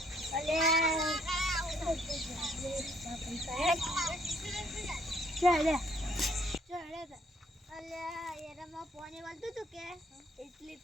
અલે ચાલે ચડે અલે એરામાં પાણી વાળતું હતું કે એટલી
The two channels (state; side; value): normal; both; correlation 0.65